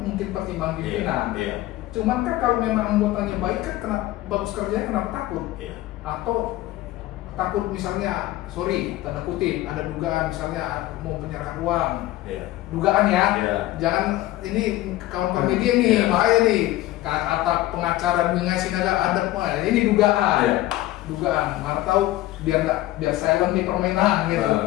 pertimbangan pimpinan. Cuman kan kalau memang anggotanya baik kan kenapa bagus kerjanya, kenapa takut? Atau takut misalnya, sorry tanda kutip ada dugaan misalnya mau penyerahan uang. Dugaan ya. Jangan ini kawan-kawan media nih bahaya nih. Kata pengacara mengasih ada ini dugaan. Dugaan, mana tahu biar silent nih permainan gitu.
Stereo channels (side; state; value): right; quieter; 16.2 dB